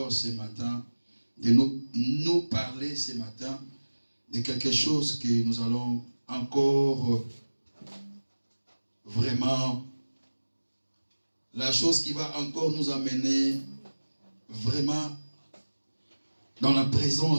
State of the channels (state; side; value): inverted; both; correlation -1.00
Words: ce matin de nous parler ce matin de quelque chose que nous allons encore vraiment, la chose qui va encore nous amener vraiment dans la